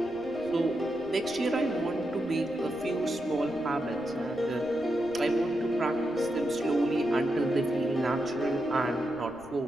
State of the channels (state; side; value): noise; right; rumble, 22 dB below the sound